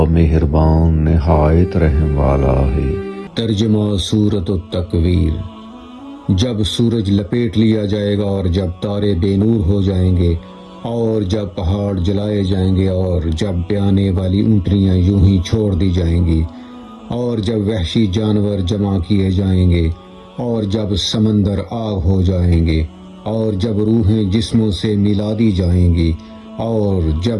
مہربان نہایت رحم والا ہے۔ ترجمہ سورۃ التکویر۔ جب سورج لپیٹ لیا جائے گا اور جب تارے بے نور ہو جائیں گے اور جب پہاڑ جلائے جائیں گے اور جب بیانے والی اونٹنیاں یوں ہی چھوڑ دی جائیں گی اور جب وحشی جانور جمع کیے جائیں گے اور جب سمندر آگ ہو جائیں گے اور جب روحیں جسموں سے ملا دی جائیں گی اور جب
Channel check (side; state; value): both; identical; correlation 1.00